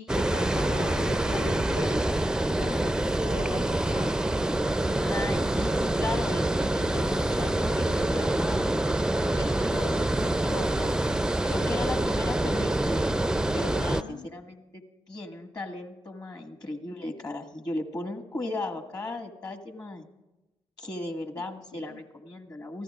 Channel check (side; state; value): both; normal; correlation 0.90